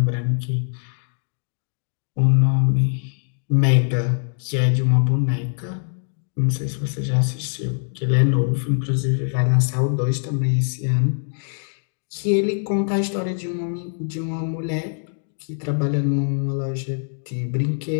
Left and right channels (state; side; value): silent; right; 64 dB below the other